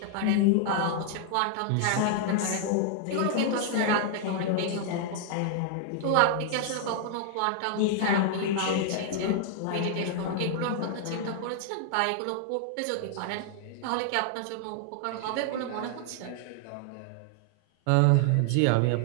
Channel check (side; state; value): both; different; correlation 0.00